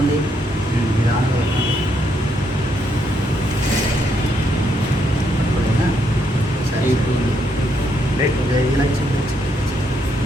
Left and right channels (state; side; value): normal; both; correlation 0.76